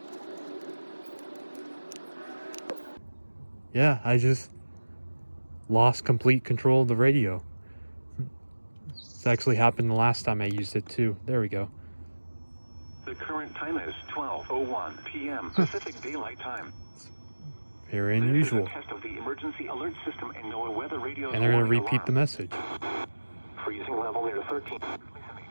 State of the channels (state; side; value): inverted; both; correlation -1.00